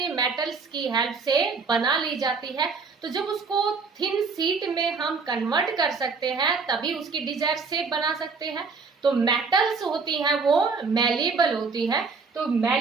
मेटल्स की हेल्प से बना ली जाती है। तो जब उसको थिन शीट में हम कन्वर्ट कर सकते हैं तभी उसकी डिजायर शेप बना सकते हैं। तो मेटल्स होती हैं वो मैलिएबल होती है। तो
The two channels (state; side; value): quieter; left; 4.7 dB